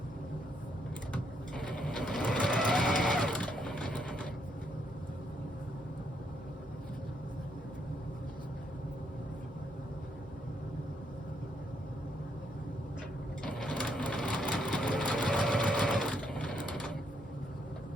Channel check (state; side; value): normal; both; correlation 0.75